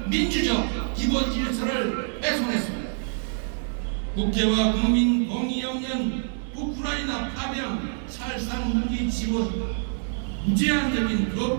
민주적 기본 질서를 훼손했습니다. 국회와 국민 동의 없는 우크라이나 파병, 살상 무기 지원, 무제한적인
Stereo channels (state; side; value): silent; left; 59 dB below the other